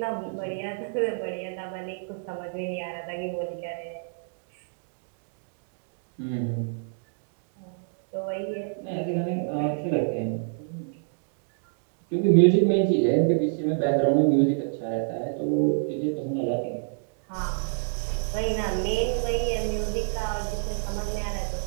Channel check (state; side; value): silent; left; digital silence